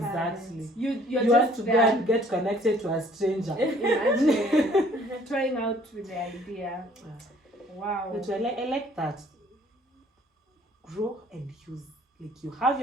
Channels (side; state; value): both; normal; correlation 0.57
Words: You're You just want to there. go and get connected to a stranger. Imagine trying out with the idea. Wow. But I like that. Grow and use. Like, you have